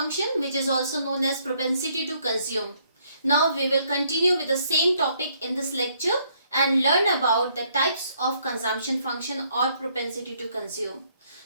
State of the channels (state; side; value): inverted; both; correlation -0.68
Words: which is also known as propensity to consume. Now we will continue with the same topic in this lecture and learn about the types of consumption function or propensity to consume.